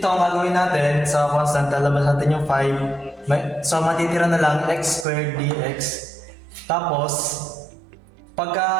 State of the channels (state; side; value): drops out; left; at 5.1 s